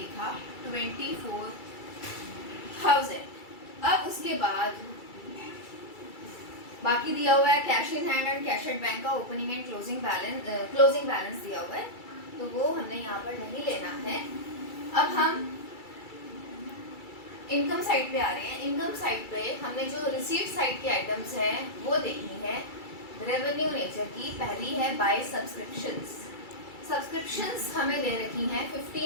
24,000। अब उसके बाद बाकी दिया हुआ है cash in hand and cash at bank का ओपनिंग एंड क्लोजिंग बैलेंस दिया हुआ है, तो वो हमने यहाँ पर नहीं लेना है। अब हम इनकम साइड पे आ रहे हैं। इनकम साइड पे हमने जो रिसीट साइड के आइटम्स हैं वो देखनी है रेवेन्यू नेचर की। पहली है बाय सब्सक्रिप्शंस। सब्सक्रिप्शंस हमें दे रखी हैं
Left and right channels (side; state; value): right; late; 2.3 ms